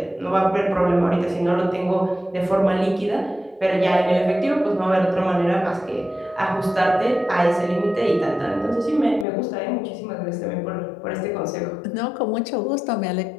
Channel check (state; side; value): drops out; right; at 9.2 s